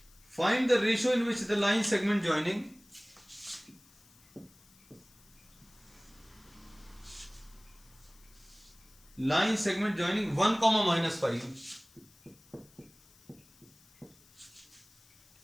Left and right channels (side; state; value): left; noise; hiss, 27 dB below the sound